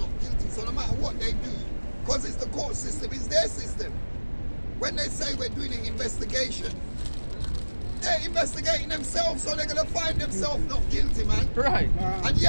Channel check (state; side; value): inverted; both; correlation -1.00